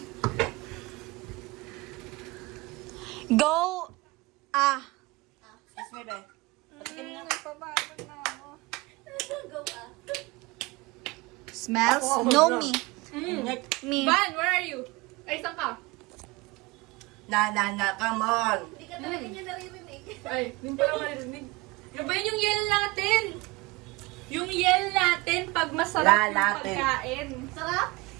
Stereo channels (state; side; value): quieter; left; 23.2 dB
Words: Go. Excuse me, be. Nagpapagod na ako. Go ah. Smells? Ako, No, bro. me. Next. Me. Van, where are you? Ay, saan ka? Na, come on. Hindi ka talaga niya naririnig. Ay, hindi pa ako marinig. Yung ba yun yung yell natin? Yung yell natin pag masarap yung Lalatin. pagkain. Sarap?